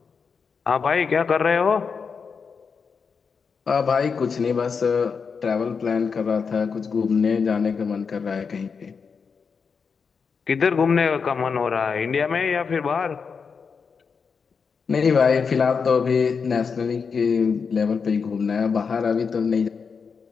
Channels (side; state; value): right; quieter; 5.7 dB